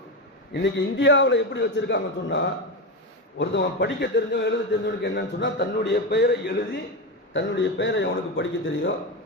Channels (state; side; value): normal; both; correlation 0.16